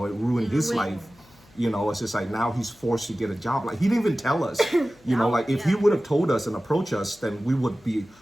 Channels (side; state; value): left; noise; hum, 29 dB below the sound